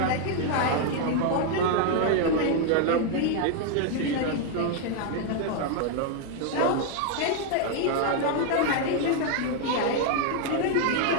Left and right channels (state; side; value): different; both; correlation 0.00